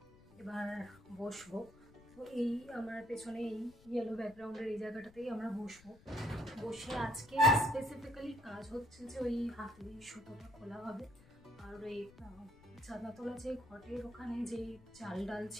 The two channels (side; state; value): left; noise; rumble, 24 dB below the sound